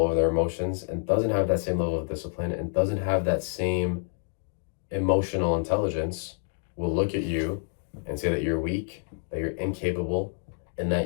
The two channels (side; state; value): right; silent; digital silence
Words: over their emotions and doesn't have that same level of discipline and doesn't have that same emotional intelligence will look at you and say that you're weak, that you're incapable, and